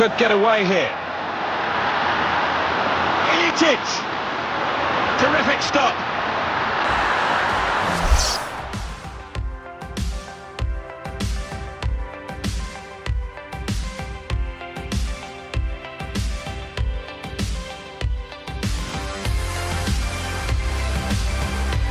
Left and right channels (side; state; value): both; identical; correlation 1.00